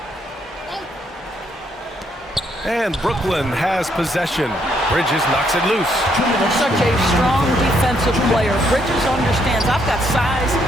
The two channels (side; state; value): both; normal; correlation 0.72